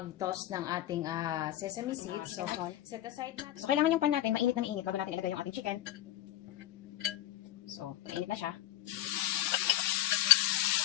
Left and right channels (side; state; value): right; quieter; 13.5 dB